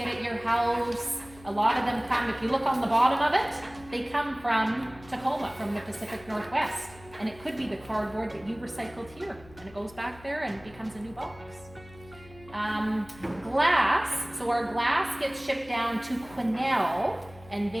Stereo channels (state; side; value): noise; left; hum, 21 dB below the sound